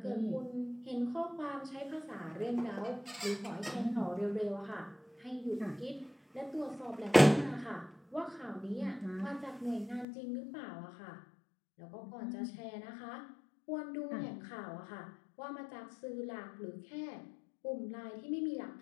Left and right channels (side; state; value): right; drops out; at 10.1 s